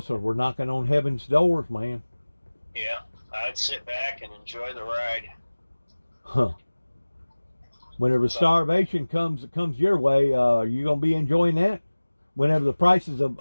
We're knocking on heaven's doors, man. Yeah. I'd sit back and enjoy the ride. Huh. Whenever starvation comes your way, you going to be enjoying that? Whenever the prices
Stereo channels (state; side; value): inverted; both; correlation -1.00